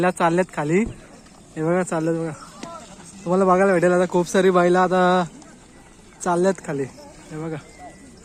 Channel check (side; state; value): both; identical; correlation 1.00